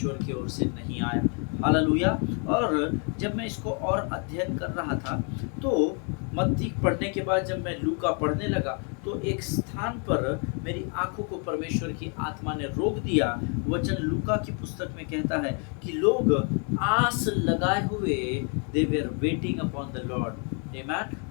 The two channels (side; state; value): right; quieter; 38.8 dB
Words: की ओर से नहीं आया। हालेलुया। और जब मैं इसको और अध्ययन कर रहा था तो मत्ती पढ़ने के बाद जब मैं लूका पढ़ने लगा तो एक स्थान पर मेरी आंखों को परमेश्वर की आत्मा ने रोक दिया। वचन लूका की पुस्तक में कहता है कि लोग आस लगाए हुए they were waiting upon the Lord.